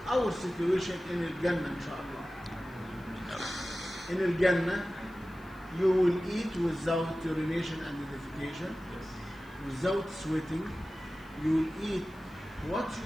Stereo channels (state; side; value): noise; left; hiss, 29 dB below the sound